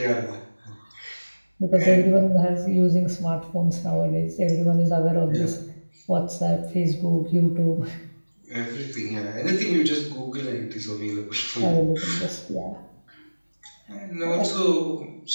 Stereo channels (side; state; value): both; inverted; correlation -1.00